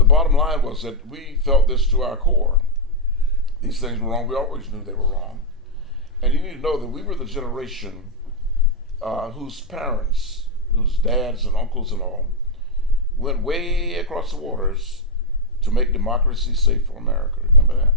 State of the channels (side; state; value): both; normal; correlation -0.01